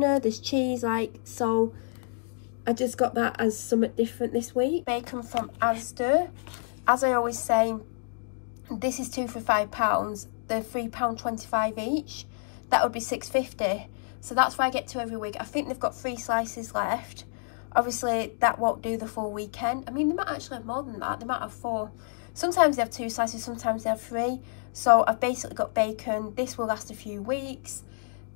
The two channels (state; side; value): silent; right; digital silence